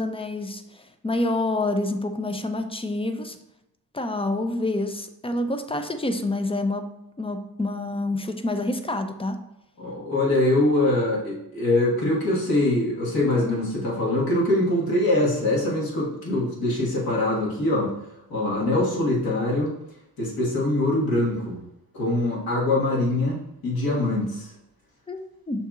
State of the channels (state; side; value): normal; both; correlation 0.42